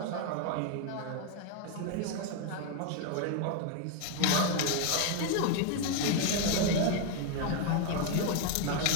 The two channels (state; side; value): different; both; correlation 0.01